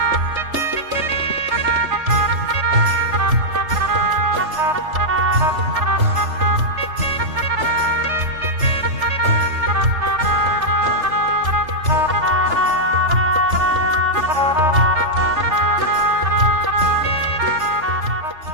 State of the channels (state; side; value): late; left; 3.3 ms